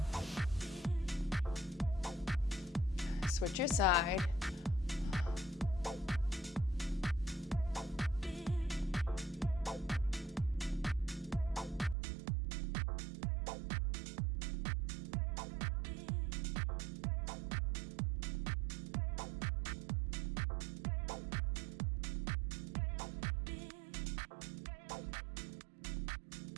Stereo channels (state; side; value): drops out; left; at 12.0 s